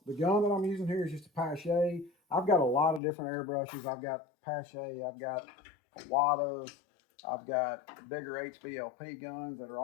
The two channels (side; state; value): right; drops out; at 3.0 s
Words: gun that I'm using here is just a Pache. I've got a lot of different airbrushes. I've got Pache, I've got Wadas, I've got bigger HBLP guns that are